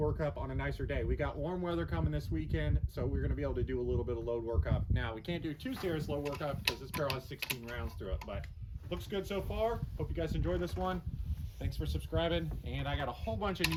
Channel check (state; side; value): identical; both; correlation 1.00